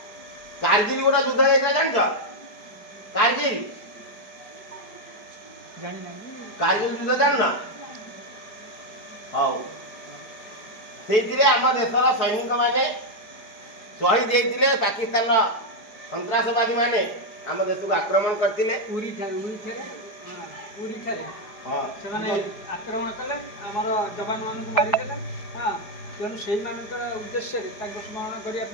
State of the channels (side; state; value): right; late; 4.6 ms